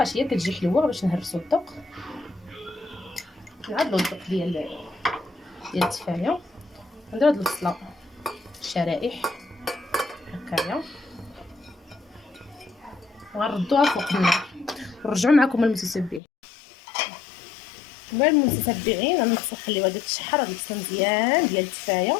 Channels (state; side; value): drops out; right; at 16.2 s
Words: هي كتجي حلوه باش نهرسو الذوق. نعدلو الذوق ديال التفايه. ندير هاد البصله شرائح هكايا وغنردوها فوق النار. نرجعوا معكم المتتبعين. المتتبعين غنخليوها تشحر هاد البصله مزيان ديال التفايه،